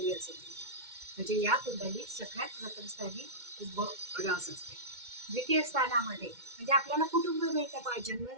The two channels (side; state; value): left; late; 2.1 ms